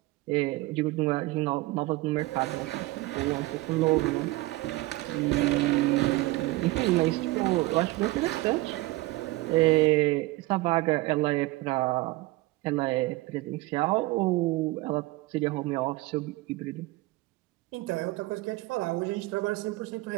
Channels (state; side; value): quieter; left; 20.0 dB